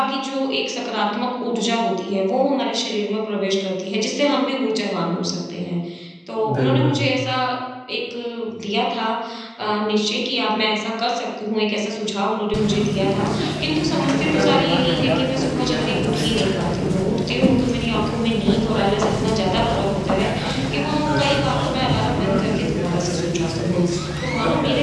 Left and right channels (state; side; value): identical; both; correlation 1.00